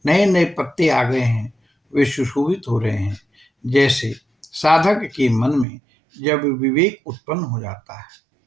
नए नए पत्ते आ गए हैं, वे सुशोभित हो रहे हैं। जैसे साधक के मन में जब विवेक उत्पन्न हो जाता है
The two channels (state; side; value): drops out; left; at 5.7 s